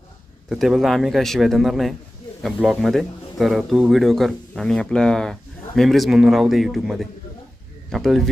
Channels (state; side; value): normal; both; correlation 0.95